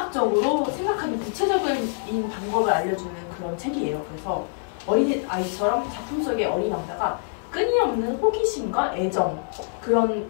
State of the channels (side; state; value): right; silent; digital silence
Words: 생각하는 구체적인 방법을 알려주는 그런 책이에요. 그래서 어린 아이처럼 작품 속의 어린 왕자가 끊임없는 호기심과 애정 그런